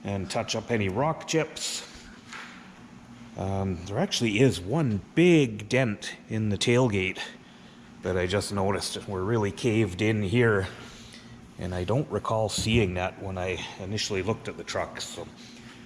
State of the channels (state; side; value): identical; both; correlation 1.00